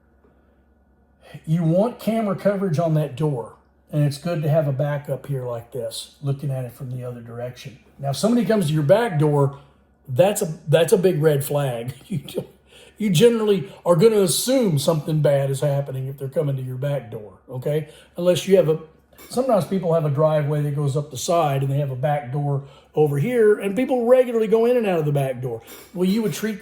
you want camera coverage on that door. And it's good to have a backup here like this, looking at it from the other direction. Now, if somebody comes to your back door, that's a big red flag. You generally are going to assume something bad is happening if they're coming to your back door, okay? Unless you have sometimes people have a driveway that goes up the side and they have a back door over here, and people regularly go in and out of the back door. Well, you would treat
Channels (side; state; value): both; identical; correlation 1.00